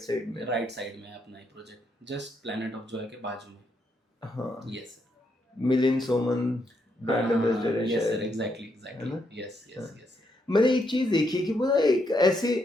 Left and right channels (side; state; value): both; normal; correlation 0.77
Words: side में. राइट साइड में है अपना ही project, just Planet of Joy के बाजू में। हाँ. Yes sir. Milind Soman brand ambassador है यस सर, शायद, एग्जैक्टली है एग्जैक्टली। ना. यस हाँ. Yes yes. मैंने एक चीज देखी कि वो एक ऐसे